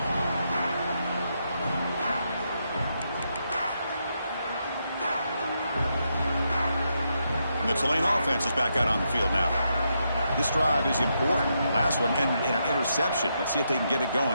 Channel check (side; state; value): both; inverted; correlation -0.81